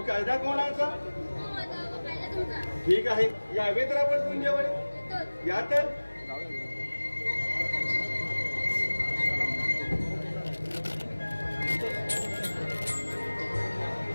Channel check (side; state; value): both; inverted; correlation -1.00